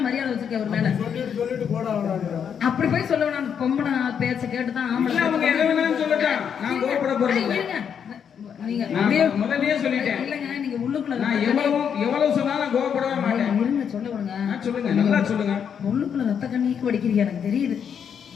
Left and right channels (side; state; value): right; quieter; 7.7 dB